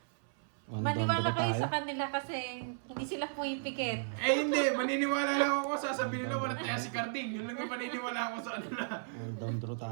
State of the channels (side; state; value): left; silent; 55 dB below the other